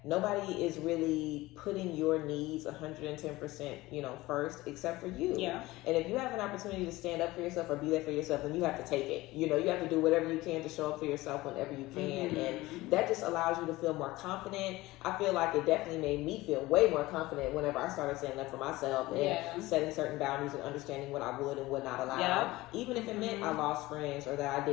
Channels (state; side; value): quieter; right; 19.1 dB